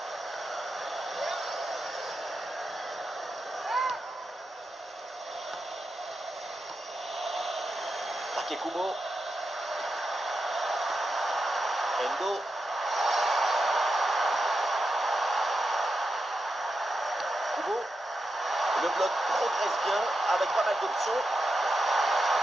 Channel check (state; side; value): normal; both; correlation 0.88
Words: Takekubo. Endo. Kubo. Le bloc progresse bien avec pas mal d'options.